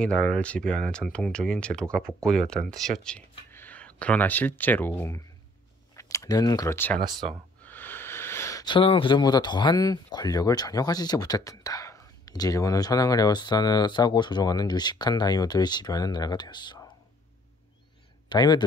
나라를 지배하는 전통적인 제도가 복고되었다는 뜻이었지. 그러나 실제로는 그렇지 않았어. 천황은 그전보다 더한 권력을 전혀 가지지 못했단다. 이제 일본은 천황을 에워싸고 조종하는 유식한 다이묘들을 지배하는 나라가 되었어.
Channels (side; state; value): both; normal; correlation 0.61